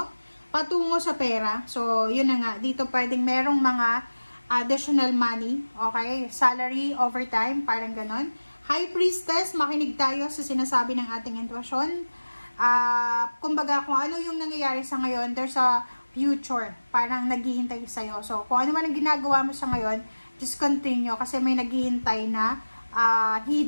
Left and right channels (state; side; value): inverted; both; correlation -1.00